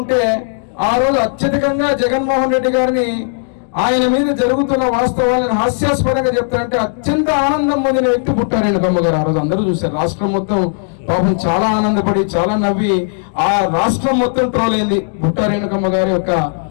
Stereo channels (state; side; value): silent; right; digital silence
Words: ఆ రోజు అత్యధికంగా జగన్మోహన్ రెడ్డి గారిని, ఆయన మీద జరుగుతున్న వాస్తవాలను హాస్యాస్పదంగా చెప్తా అంటే అత్యంత ఆనందం పొందిన వ్యక్తి బుట్టా రేణుకమ్మ గారు. ఆ రోజు అందరూ చూశారు. రాష్ట్రం మొత్తం పాపం చాలా ఆనందపడి, చాలా నవ్వి, ఆ రాష్ట్రం మొత్తం ట్రోల్ అయింది బుట్టా రేణుకమ్మ గారి యొక్క